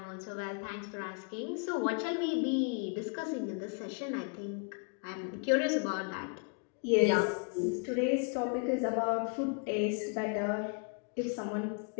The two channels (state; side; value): quieter; right; 39.2 dB